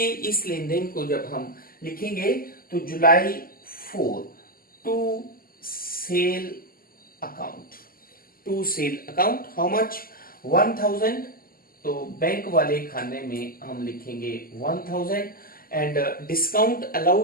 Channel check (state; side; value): late; right; 0.42 ms